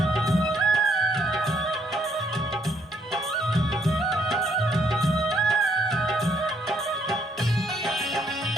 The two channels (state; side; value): normal; both; correlation 0.70